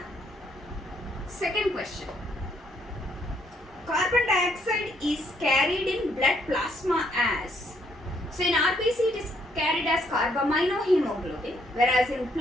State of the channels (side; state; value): both; normal; correlation 0.71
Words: Second question, carbon dioxide is carried in blood plasma as, so in RBC it is carried as carbaminohemoglobin, whereas in